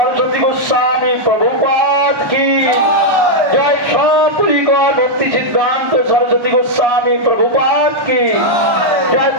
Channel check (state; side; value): late; left; 1.1 ms